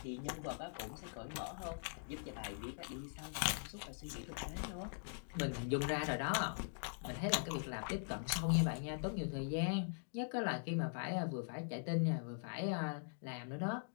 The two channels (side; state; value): right; silent; digital silence